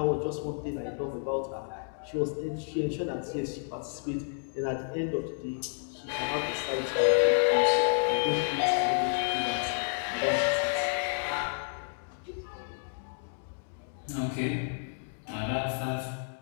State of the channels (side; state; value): right; silent; 57 dB below the other